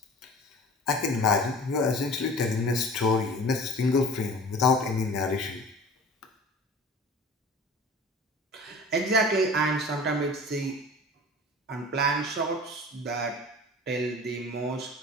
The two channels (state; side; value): normal; both; correlation 0.41